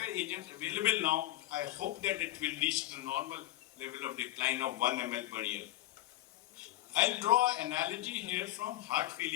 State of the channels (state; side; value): quieter; right; 15.4 dB